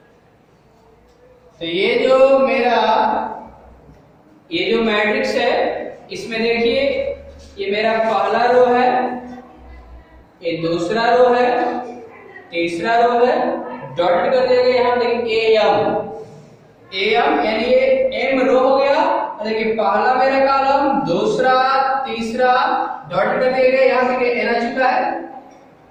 तो ये जो मेरा ये जो मैट्रिक्स है, इसमें देखिए ये मेरा पहला रो है, ये दूसरा रो है, तीसरा रो है, डॉट कर देंगे। यहाँ देखिए am यानी ये m रो हो गया पहला मेरा कॉलम, दूसरा, तीसरा डॉट कर दिया गया, यहाँ पे n आ चुका है।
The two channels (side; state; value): both; identical; correlation 1.00